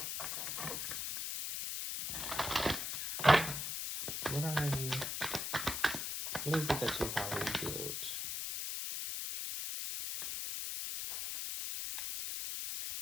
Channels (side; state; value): left; noise; hiss, 2 dB below the sound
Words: What is it that you've already healed?